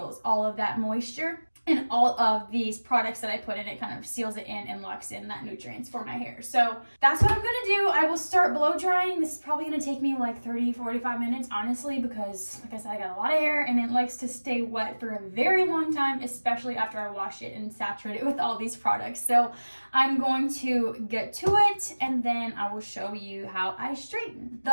all of that moisture. And all of these products that I put in, it kind of seals it in and locks in that nutrients for my hair. So that's what I'm gonna do. I will start blow drying. This is probably gonna take me like 30-45 minutes, honestly, because like I said, I got a lot of hair and it likes to stay wet for a very long time, especially after I wash it and saturate it with all these products. So I'm going to get to it, and then I will show you how I straighten. The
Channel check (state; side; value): inverted; both; correlation -1.00